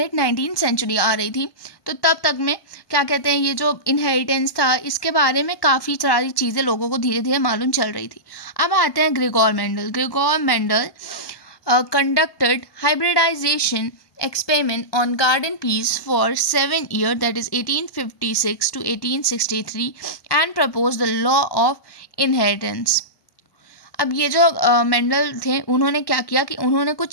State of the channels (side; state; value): right; late; 1.1 ms